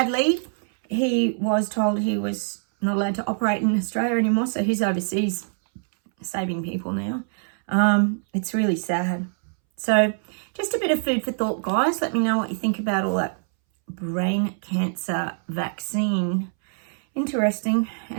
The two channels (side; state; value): left; silent; 63 dB below the other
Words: he was told he was not allowed to operate in Australia anymore, so he's overseas saving people now. It's really sad. So just a bit of food for thought, guys. Let me know what you think about all that brain cancer vaccine. Interesting.